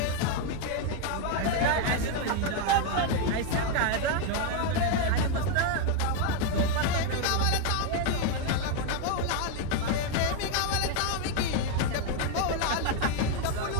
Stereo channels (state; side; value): different; both; correlation 0.01